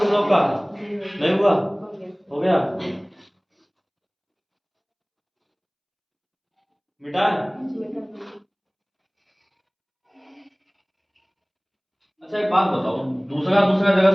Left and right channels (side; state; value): both; identical; correlation 1.00